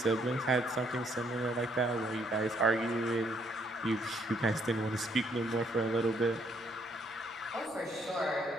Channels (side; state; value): both; normal; correlation 0.70